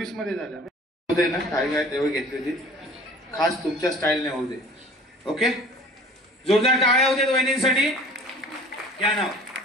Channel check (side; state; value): both; normal; correlation 0.46